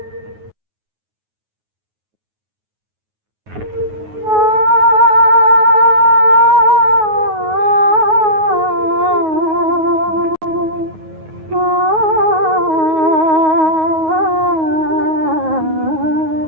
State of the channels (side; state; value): left; late; 9.4 ms